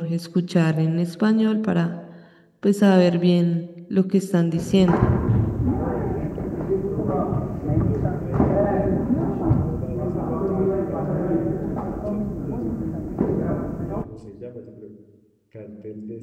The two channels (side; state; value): both; identical; correlation 1.00